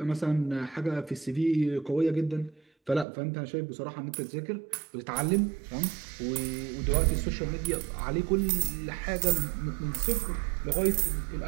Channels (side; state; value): left; drops out; at 3.1 s